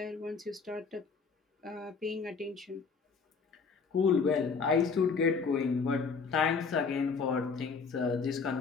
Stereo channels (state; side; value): quieter; right; 5.2 dB